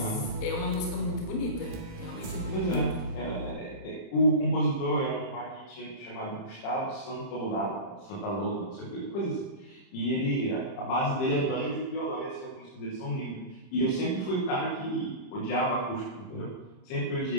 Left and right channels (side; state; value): right; late; 30 ms